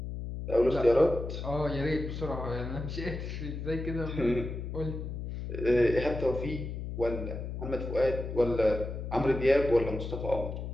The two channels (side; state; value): left; noise; hum, 6 dB below the sound